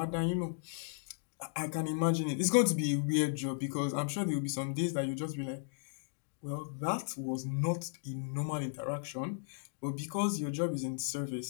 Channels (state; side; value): silent; right; digital silence